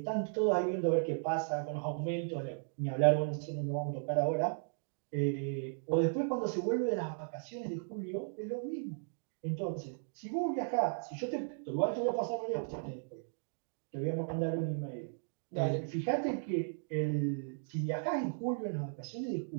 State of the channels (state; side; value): silent; left; digital silence